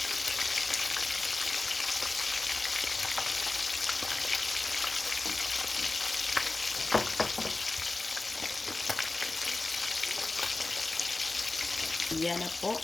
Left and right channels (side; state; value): right; quieter; 3.2 dB